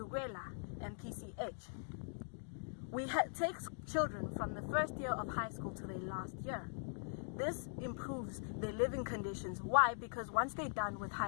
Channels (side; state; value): right; silent; digital silence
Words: and PCH. We take children from the first year of high school to their last year. This improves their living conditions. Why? Because once they're done with